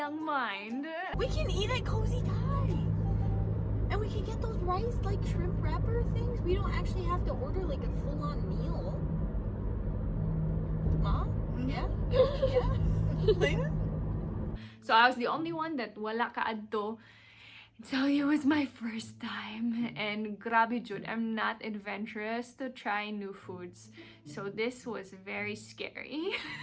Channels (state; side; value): identical; both; correlation 1.00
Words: mind, We can eat at Cozy Thai. And we can get those rice, like, shrimp wrapper things. We don't actually have to order, like, a full-on meal. Mom? Yeah? Yeah? so I was the only one that wala kaadto. So it was my first time, and grabe jud, I'm not adventurous to try new foods. So this was very scary.